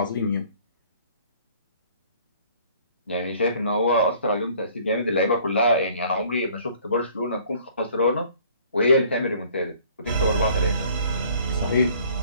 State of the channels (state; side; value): inverted; both; correlation -0.55